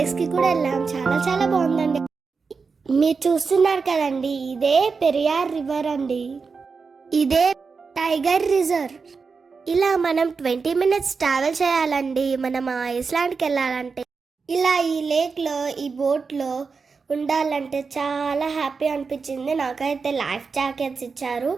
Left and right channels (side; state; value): left; quieter; 4.9 dB